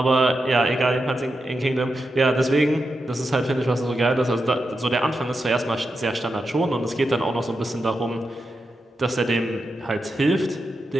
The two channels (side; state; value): both; normal; correlation 0.87